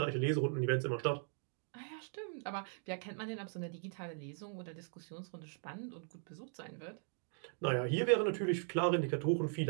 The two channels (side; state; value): left; silent; 52 dB below the other